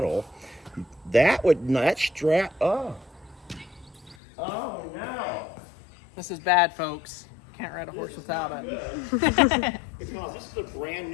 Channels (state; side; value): drops out; right; at 4.2 s